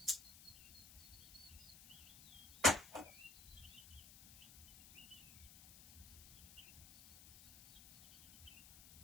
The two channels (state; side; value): noise; left; hiss, 18 dB below the sound